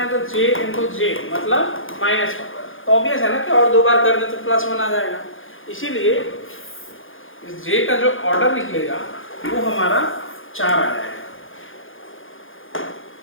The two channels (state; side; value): late; right; 0.58 ms